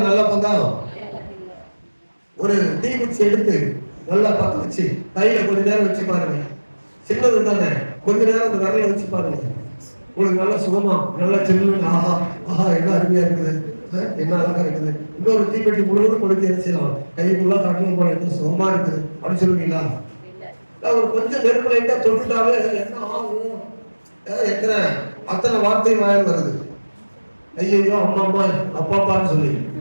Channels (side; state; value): both; inverted; correlation -1.00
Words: நல்ல பங்கா? ஒரு தீக்குச்சி எடுத்து நல்லா பத்த வச்சு கையில கொஞ்ச நேரம் வச்சு பாருங்க. சின்னது தானே, கொஞ்ச நேரம் அந்த விரல வச்சு பாருங்க. உங்களுக்கு நல்லா சுகமா நல்லா சின்ன ஆஹா என்ன அருமையா இருக்குது, என்ன அழகா இருக்குது. இன்னொரு தீப்பெட்டி முழுவதும் கொடுத்து என்ன செய்யலாம்? கைக்குள்ள காட்டணும் போல என்ன சுகமா இருக்குது அப்படின்னு சொல்லுவீங்களா? ஒரு கொஞ்சம் நெருப்பு லைட்டா தொட்டுட்டாவே என்ன ஆகும்? அத்தனை வார்த்தை வாயில் வருது. ஐயோ அம்மா அம்மா அப்பாப்பான்னு சொல்லி